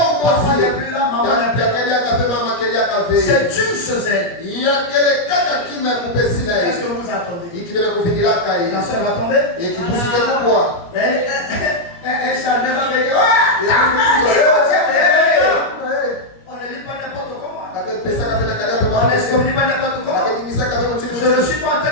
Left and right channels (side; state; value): right; late; 17 ms